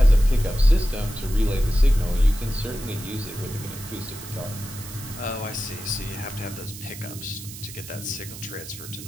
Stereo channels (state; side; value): noise; right; hiss, 13 dB below the sound